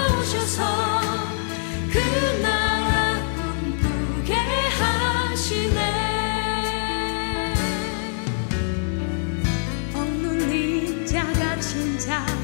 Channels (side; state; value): right; silent; digital silence